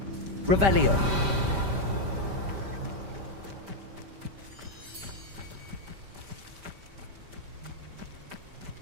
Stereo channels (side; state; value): left; late; 5.1 ms